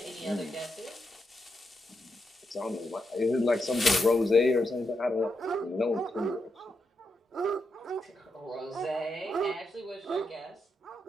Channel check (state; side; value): normal; both; correlation 0.84